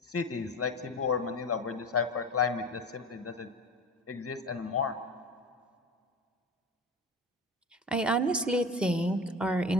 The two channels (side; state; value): both; normal; correlation 0.32